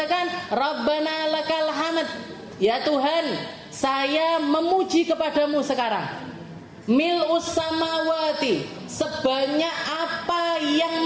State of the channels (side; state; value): both; identical; correlation 1.00